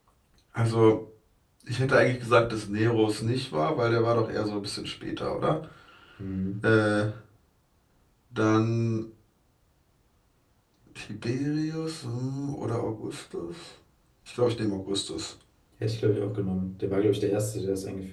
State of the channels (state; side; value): identical; both; correlation 1.00